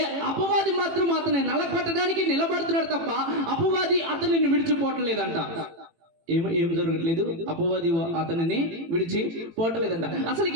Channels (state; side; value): late; left; 18 ms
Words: అపవాది మాత్రం అతన్ని నలగొట్టడానికి నిలబడుతున్నాడు తప్ప అపవాది అతనిని విడిచిపోవట్లేదంట. ఏం జరగట్లేదు, అపవాది అతనిని విడిచిపోవట్లేదంట. అసలు